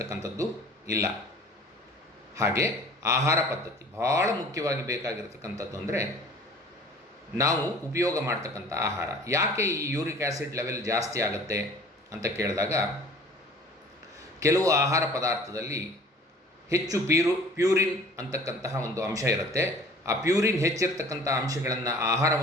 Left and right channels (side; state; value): both; normal; correlation 0.47